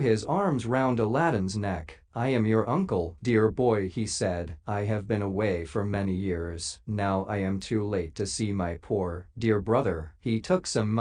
arms round Aladdin's neck. "I am your uncle, dear boy," he said. "I have been away for many years. Now I am too late to see my poor, dear brother." He took some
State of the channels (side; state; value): both; identical; correlation 1.00